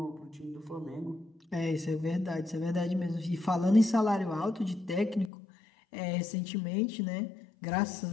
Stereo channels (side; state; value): right; drops out; at 5.3 s